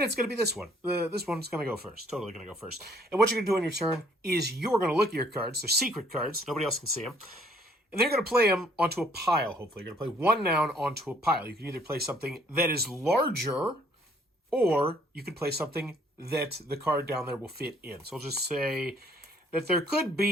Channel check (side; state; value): both; normal; correlation 0.62